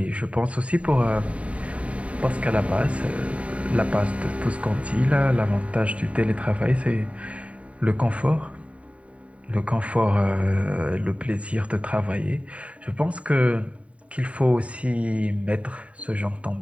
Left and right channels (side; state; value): left; late; 0.065 ms